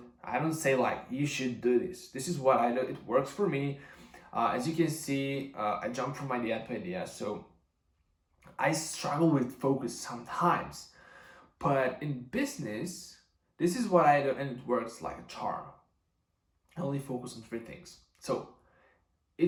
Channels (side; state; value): both; identical; correlation 1.00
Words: I don't say like, you should do this. This is what I do. It works for me. As you can see, I jump from idea to idea. So I struggle with focus sometimes. But in business, this is what I do, and it works like a charm. I only focus on 3 things. So